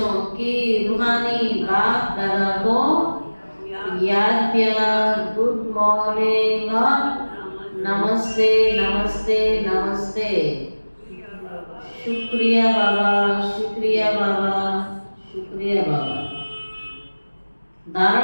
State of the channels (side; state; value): both; inverted; correlation -1.00